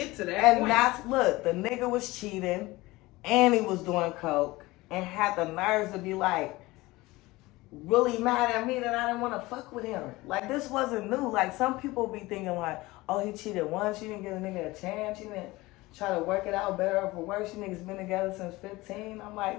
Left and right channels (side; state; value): right; quieter; 20.3 dB